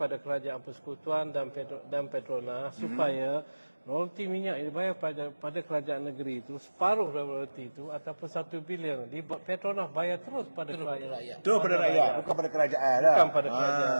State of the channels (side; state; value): both; inverted; correlation -1.00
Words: kerajaan persekutuan dan Petronas supaya royalti minyak yang dibayar pada kerajaan negeri itu, separuh dari royalti itu ataupun 1 bilion di Petronas bayar terus pada rakyat. Terus pada rakyat, bukan pada kerajaan lah. Bukan pada